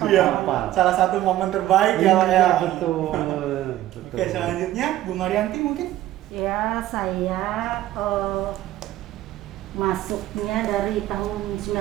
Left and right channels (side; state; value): left; quieter; 14.1 dB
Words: hafal. Salah satu momen terbaik ya Pak ya. Betul. Oke, selanjutnya Bu Marianti mungkin. Ya, saya masuknya dari tahun